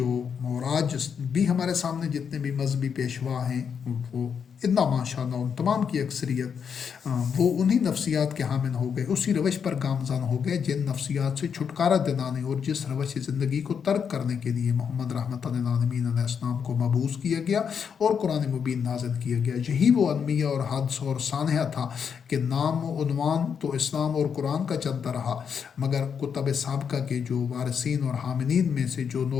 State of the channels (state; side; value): quieter; right; 7.0 dB